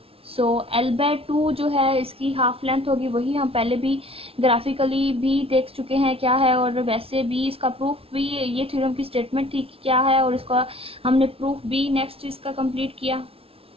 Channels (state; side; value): late; left; 0.27 ms